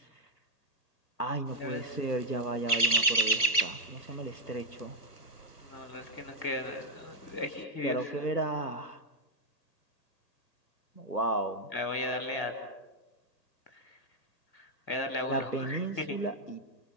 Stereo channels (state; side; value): late; right; 1.3 ms